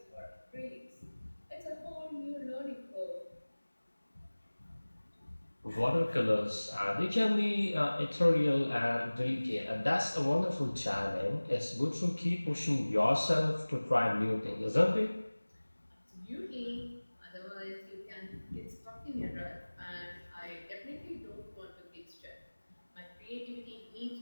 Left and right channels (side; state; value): both; inverted; correlation -1.00